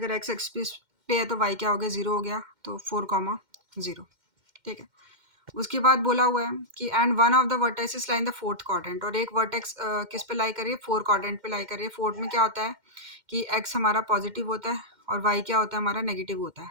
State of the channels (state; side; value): late; left; 2.1 ms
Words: एक्स एक्सिस पे है तो वाई क्या हो गया 0 हो गया, तो 4,0। ठीक है, उसके बाद बोला हुआ है कि and one of the vertexes lie in the fourth quadrant, और एक वर्टेक्स किस पे लाई करिए, 4 क्वाड्रेंट पे लाई करिए। फोर्थ में क्या होता है कि एक्स हमारा पॉजिटिव होता है और वाई क्या होता है हमारा नेगेटिव होता